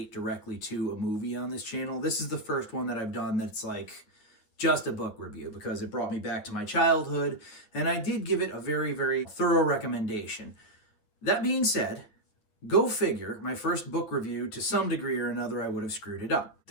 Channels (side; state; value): right; late; 9.7 ms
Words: directly to a movie on this channel. This is the first one that I've done that's, like, just a book review because it brought me back to my childhood, and I did give it a very, very thorough recommendation. That being said, go figure, my first book review, to some degree or another, I would have screwed it up.